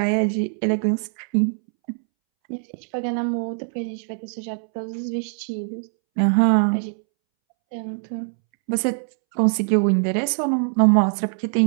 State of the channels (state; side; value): silent; left; 64 dB below the other